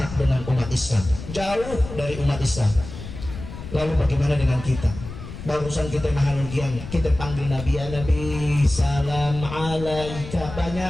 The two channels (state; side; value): noise; left; rumble, 11 dB below the sound